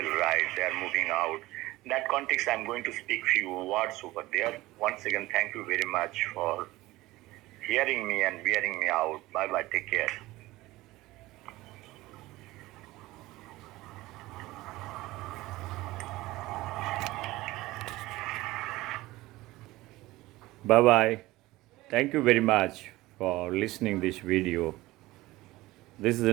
right? They are moving out. In that context, I'm going to speak few words over there. Once again, thank you very much for hearing me and bearing me out. Bye-bye. Take care. Bye-bye. Thank you very much for listening this video. This is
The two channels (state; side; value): quieter; left; 18.7 dB